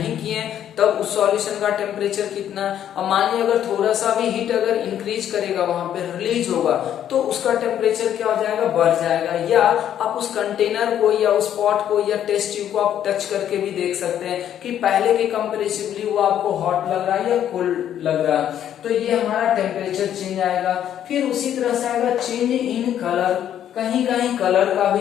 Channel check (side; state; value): right; quieter; 10.4 dB